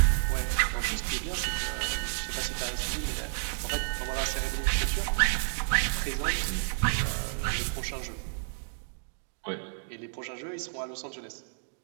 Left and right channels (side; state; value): left; silent; digital silence